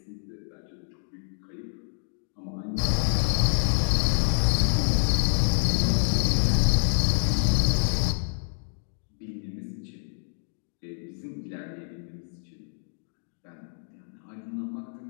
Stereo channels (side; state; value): right; silent; digital silence